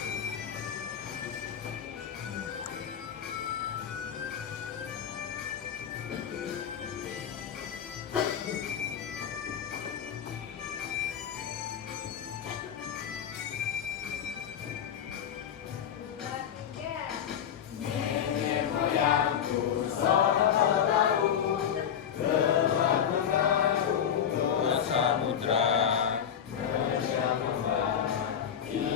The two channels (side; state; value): right; quieter; 8.7 dB